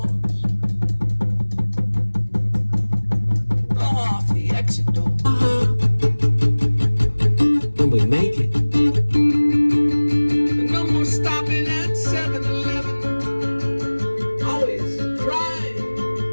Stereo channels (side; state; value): both; inverted; correlation -1.00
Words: Off the exit door. When we make it. And no more stopping at 7-Eleven. Always crying